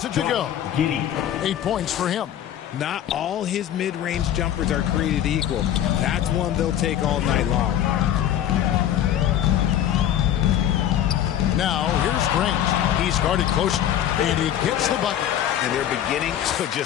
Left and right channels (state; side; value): quieter; right; 11.0 dB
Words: it to go. 8 points for him. Not all his mid-range jumpers are created equal. That's one they'll take all night long. Now, here's Grant. He's guarded closely, and he gets the bucket. And they're beginning to